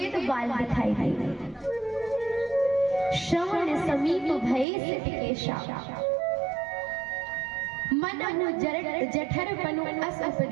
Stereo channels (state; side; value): drops out; left; at 4.7 s